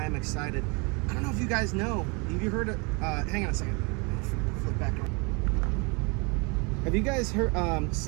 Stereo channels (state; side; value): quieter; left; 30.7 dB